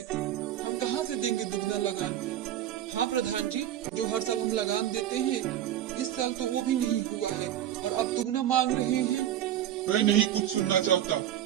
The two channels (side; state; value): left; quieter; 11.5 dB